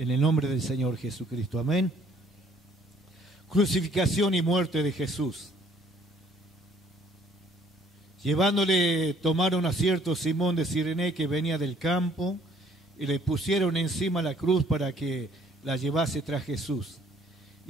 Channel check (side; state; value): both; normal; correlation 0.60